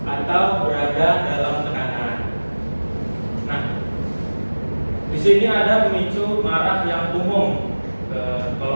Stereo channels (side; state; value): both; inverted; correlation -1.00